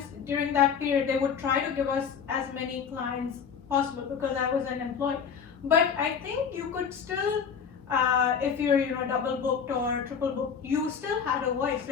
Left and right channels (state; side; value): quieter; right; 6.8 dB